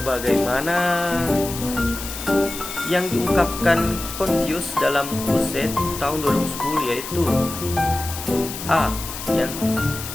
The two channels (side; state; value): left; noise; hiss, 9 dB below the sound